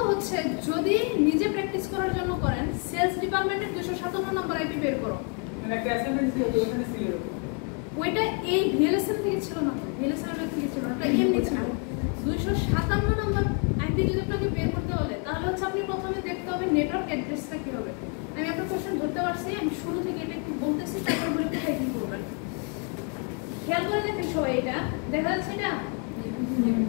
হচ্ছে যদি নিজে প্র্যাকটিস করার জন্য করেন, সেলস ডিপার্টমেন্টের 257 নম্বর আইপি বের করো। ওইটা এই ভিএলএসএম থেকে ছিল না, ভিএলএসএম থেকে ছিল না, এটা এমনি ছিল। 257 নম্বর আইপি যদি আপনাকে বের করতে বলে, তাহলে হচ্ছে আপনি প্রথমে দেখতে হবে নেটওয়ার্ক অ্যাড্রেসটা কি হবে। আমি আপনার কোশ্চেন ধরতে পারছি, আমি শুরু থেকে এটা একটু বলতেছি, তারপর বলে কোথায় কি করবেন। খেয়াল করে দেখেন সবাই, এটা দেখা যাচ্ছে এটা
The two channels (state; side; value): quieter; right; 37.3 dB